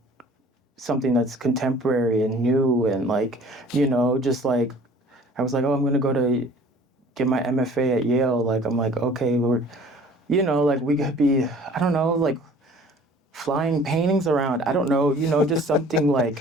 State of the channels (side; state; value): both; normal; correlation 0.50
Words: something that's contemporary and new and like, you know, just like I was like, oh, I'm going to go to get my MFA at Yale. Like I'm like, okay, we're, you know, like we could be, I don't know, like flying paintings around. I don't know, you know, just something